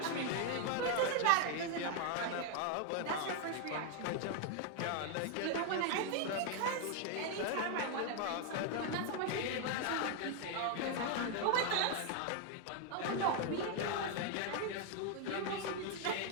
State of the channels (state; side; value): different; both; correlation 0.00